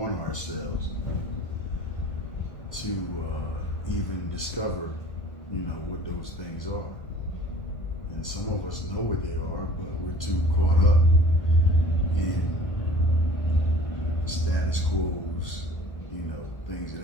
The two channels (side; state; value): right; late; 1.3 ms